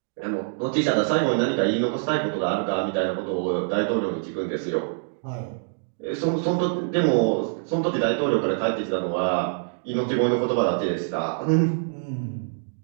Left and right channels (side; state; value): left; silent; digital silence